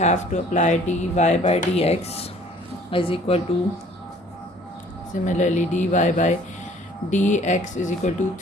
to apply dy by dx is equal to, similarly dy by dx is equal to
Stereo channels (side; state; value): both; normal; correlation 0.54